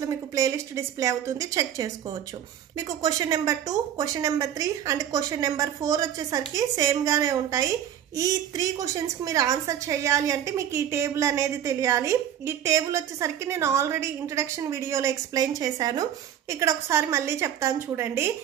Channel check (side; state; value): left; quieter; 10.2 dB